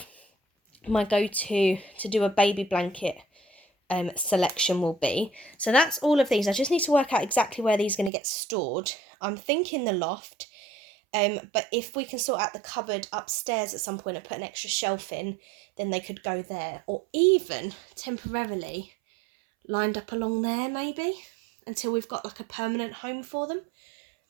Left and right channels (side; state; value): left; drops out; at 8.1 s